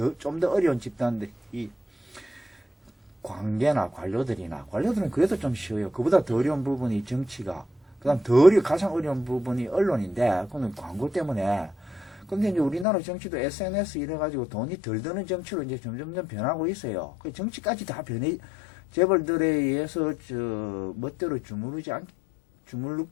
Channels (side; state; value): right; drops out; at 12.9 s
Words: 좀 더 어려운 집단들이 관계나 관료들은 그래도 좀 쉬워요. 그보다 더 어려운 부분이 정치가, 그다음 가장 어려운 부분이 언론인데, 그건 광고 때문에. 근데 이제 우리나라 정치도 SNS 이래가지고 돈이 덜 드는 정치로 이제 점점점 변하고 있어요. 그 정치까지 다 재벌들에 의해서 멋대로 주물럭